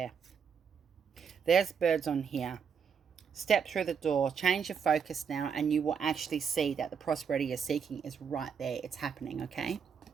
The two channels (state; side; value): quieter; left; 6.7 dB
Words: There's birds on here. Step through the door, change your focus now, and you will actually see that the prosperity you're seeking is right there. It's happening, okay?